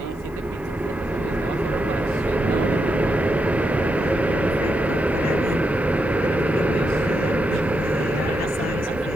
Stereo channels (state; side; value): noise; left; hiss, 30 dB below the sound